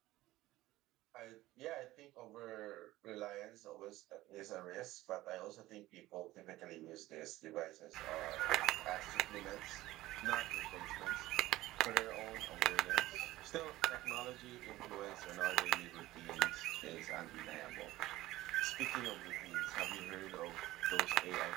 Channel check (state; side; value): quieter; left; 17.0 dB